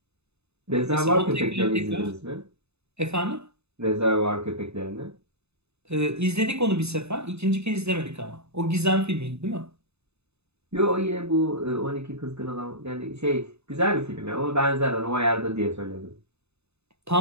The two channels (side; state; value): left; late; 0.80 ms